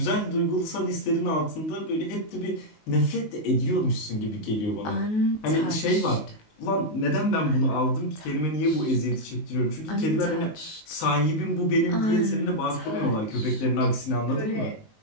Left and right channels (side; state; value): right; late; 19 ms